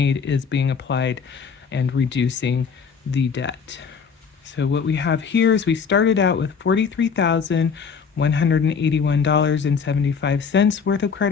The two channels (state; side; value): quieter; right; 6.1 dB